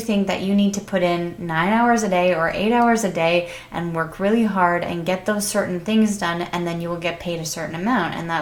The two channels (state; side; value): identical; both; correlation 1.00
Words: that you need to put in 9 hours a day or 8 hours a day and work really hard and get those certain things done, and then you will get paid a certain amount. And